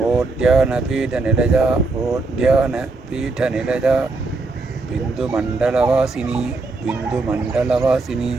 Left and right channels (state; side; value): quieter; left; 3.6 dB